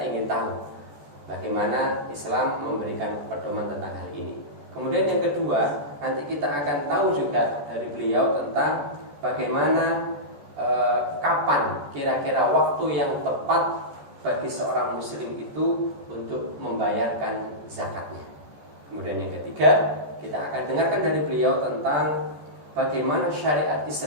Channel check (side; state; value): left; late; 14 ms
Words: tahu bagaimana Islam memberikan pedoman tentang hal ini. Kemudian yang kedua, nanti kita akan tahu juga dari beliau tentang bagaimana kapan kira-kira waktu yang tepat bagi seorang muslim itu untuk membayarkan zakatnya. Kemudian yang ketiga, kita akan dengarkan dari beliau tentang bagaimana syariat